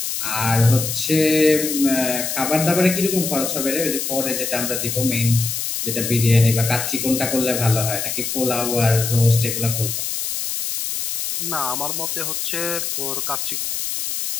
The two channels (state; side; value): noise; left; hiss, 3 dB below the sound